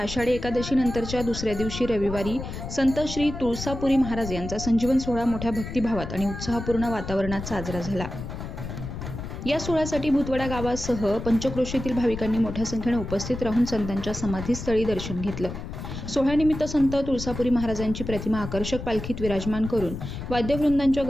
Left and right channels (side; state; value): left; noise; rumble, 8 dB below the sound